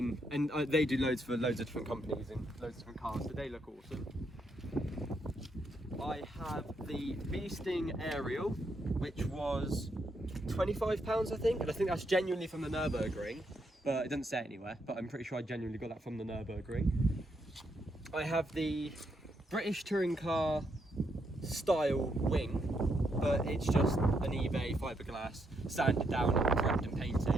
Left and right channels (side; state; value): both; normal; correlation 0.78